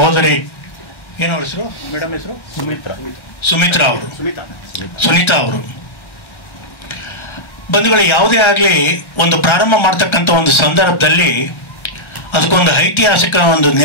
ಏನವ್ರ ಹೆಸರು ಮೇಡಮ್ ಹೆಸರು ಸುಮಿತ್ರಾ ಅವರು ಸುನೀತಾ ಅವರು ಬಂಧುಗಳು, ಯಾವುದೇ ಆಗಲಿ ಒಂದು ಪ್ರಾರಂಭ ಮಾಡ್ತಕ್ಕಂಥ ಒಂದು ಸಂದರ್ಭದಲ್ಲಿ ಅದಕ್ಕೊಂದು ಐತಿಹಾಸಿಕ ಒಂದು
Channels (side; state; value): right; late; 1.3 ms